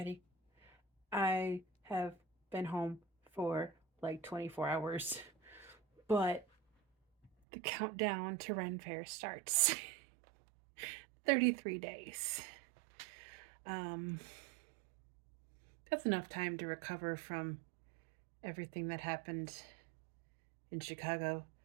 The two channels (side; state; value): left; drops out; at 7.3 s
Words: I have been home for like 24 hours, but the countdown to Ren Fair starts. 33 days. Um, that's enough time to recover from everything that happened in Chicago.